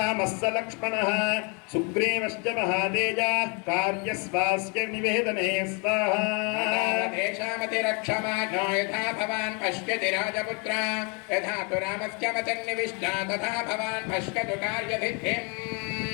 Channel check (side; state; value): right; quieter; 34.2 dB